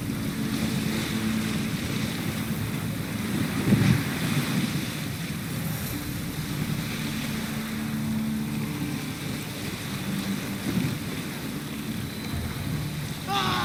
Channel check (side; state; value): both; identical; correlation 1.00